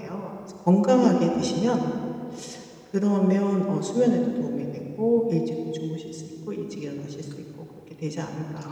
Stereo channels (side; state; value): both; identical; correlation 1.00